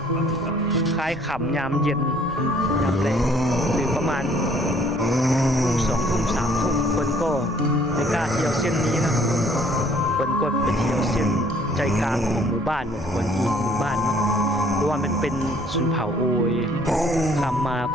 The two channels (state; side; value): noise; right; rumble, 17 dB below the sound